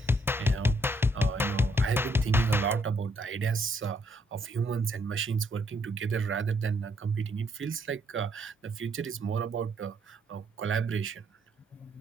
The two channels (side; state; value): both; normal; correlation 0.71